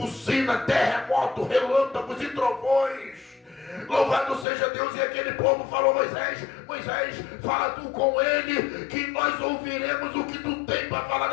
terremoto, relâmpagos e trovões. Louvado seja Deus. E aquele povo falou: Moisés, fala tu com ele, que nós ouviremos o que tu tem para falar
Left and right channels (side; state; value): right; drops out; at 4.5 s